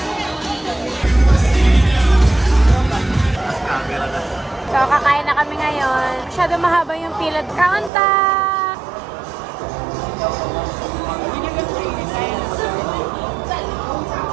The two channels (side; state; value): left; drops out; at 7.9 s